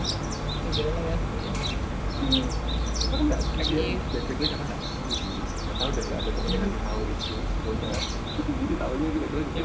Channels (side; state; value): both; identical; correlation 1.00